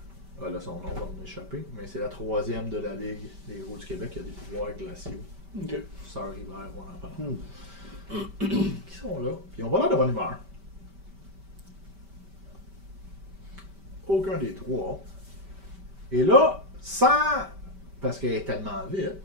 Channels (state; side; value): late; left; 5.1 ms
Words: son nom va m'échapper, mais c'est la troisième de la Ligue des Héros du Québec qui a des pouvoirs glaciaux. Ok. Sœur Hiver, on en parle. Qui sont là, puis ils ont pas l'air de bonne humeur. Aucun des trois. Et là, parce qu'elle est tellement vite,